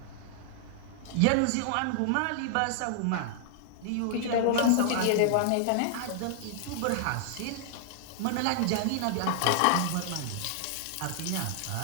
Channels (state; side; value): different; both; correlation -0.01